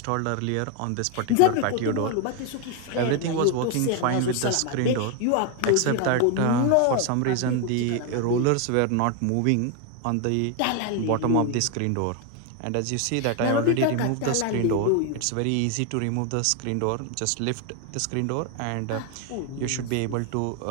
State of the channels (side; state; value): both; different; correlation 0.01